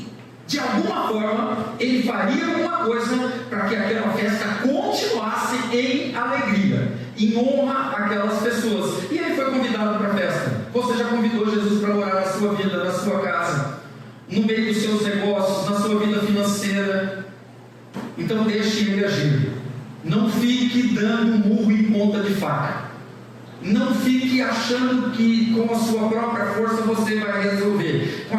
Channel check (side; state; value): both; identical; correlation 1.00